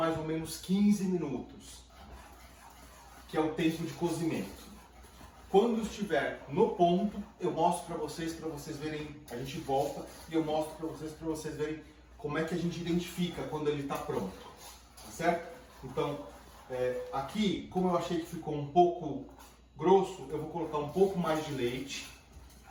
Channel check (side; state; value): both; identical; correlation 1.00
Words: ou menos 15 minutos, que é o tempo de cozimento. Quando estiver no ponto, eu mostro para vocês verem, a gente volta e eu mostro para vocês verem como é que a gente identifica quando ele está pronto, tá certo? Então, aqui, como eu achei que ficou um pouco grosso, eu vou colocar um pouco mais de leite,